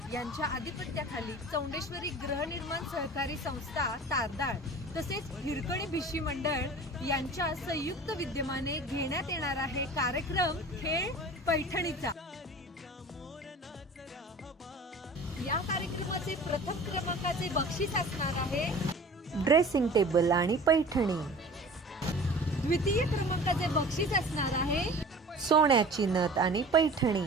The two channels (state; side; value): normal; both; correlation 0.41